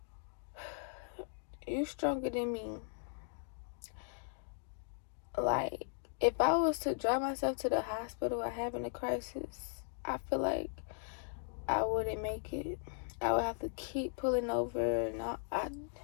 you're stronger than me. Like, if I was to drive myself to the hospital while having a crisis, I feel like I wouldn't make it. I would have to keep pulling over, and I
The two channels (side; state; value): right; silent; digital silence